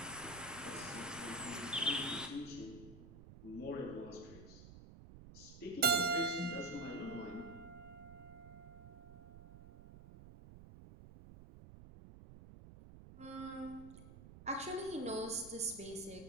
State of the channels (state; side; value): noise; right; rumble, 15 dB below the sound